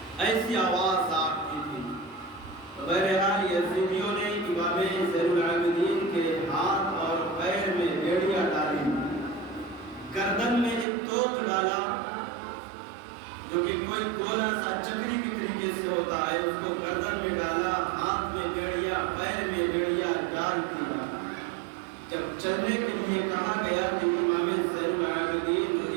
ایسی آواز آتی تھی۔ بہرحال یزیدیوں نے امام زین العابدین کے ہاتھ اور پیر میں بیڑیاں ڈالی، گردن میں ایک توق ڈالا جو کہ کوئی گولا سا چکری کی طریقے سے ہوتا ہے، اس کو گردن میں ڈالا، ہاتھ میں بیڑیا، پیر میں بیڑیا ڈال دیا۔ جب چلنے کے لیے کہا گیا تو امام زین العابدین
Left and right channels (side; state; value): left; drops out; at 10.9 s